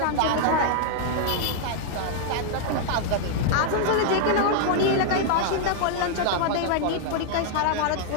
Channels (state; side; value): different; both; correlation -0.01